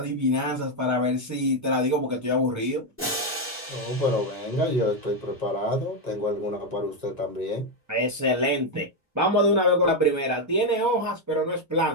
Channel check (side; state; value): both; normal; correlation 0.05